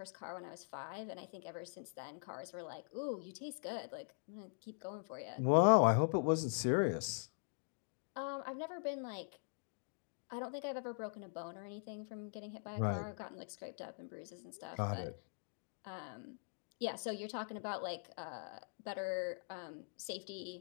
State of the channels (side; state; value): right; silent; digital silence